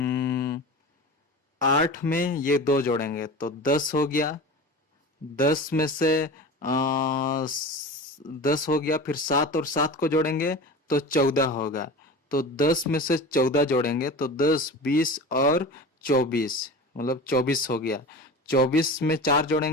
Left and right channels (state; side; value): normal; both; correlation 0.32